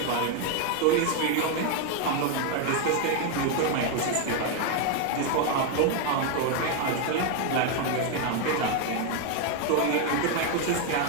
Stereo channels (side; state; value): both; different; correlation 0.01